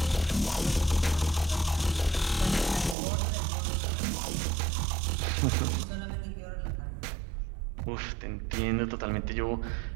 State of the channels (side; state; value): left; drops out; at 3.0 s